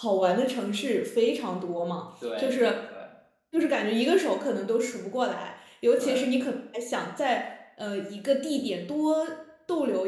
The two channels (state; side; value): identical; both; correlation 1.00